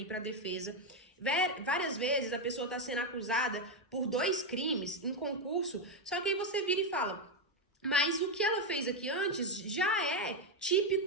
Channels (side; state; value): both; normal; correlation 0.06